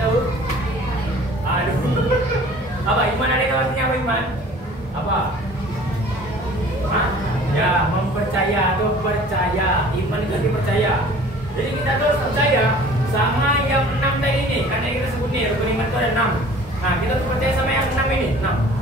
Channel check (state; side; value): normal; both; correlation 0.48